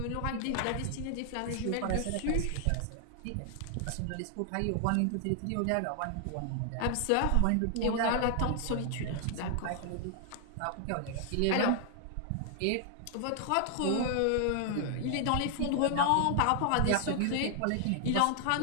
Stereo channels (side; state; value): both; different; correlation 0.00